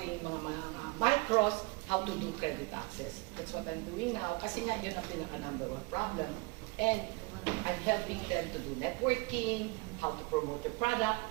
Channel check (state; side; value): quieter; left; 27.2 dB